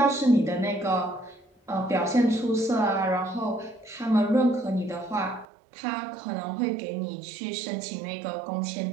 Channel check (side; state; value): left; drops out; at 5.5 s